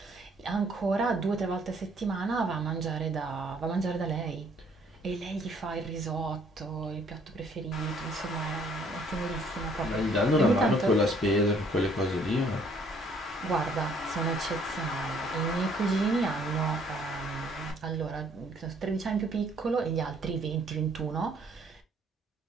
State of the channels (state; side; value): normal; both; correlation 0.62